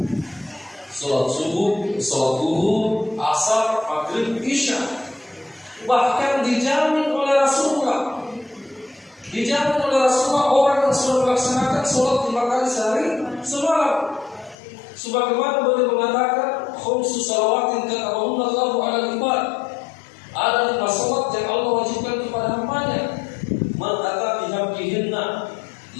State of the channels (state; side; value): drops out; right; at 14.6 s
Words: Sholat subuh, sholat duhur, asar, maghrib, isya. Bahkan dijamin oleh Rasulullah. Dijamin oleh Rasulullah orang yang sudah melaksanakan sholat 5 kali sehari semalam. Sebagaimana beliau mengatakan, khamsu salawatin katabahunna Allahu 'alal ibad. Ada 5 sholat yang Allah wajibkan kepada hambanya. Man ata bihaqqihinna